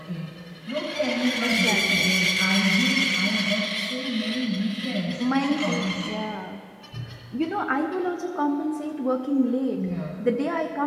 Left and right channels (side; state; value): both; identical; correlation 1.00